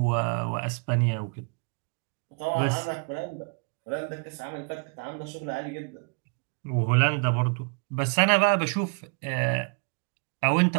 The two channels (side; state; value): left; quieter; 38.4 dB